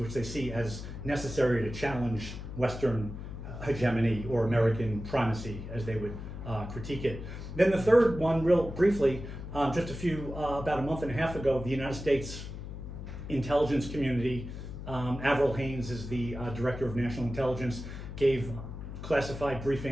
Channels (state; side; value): noise; left; hum, 9 dB below the sound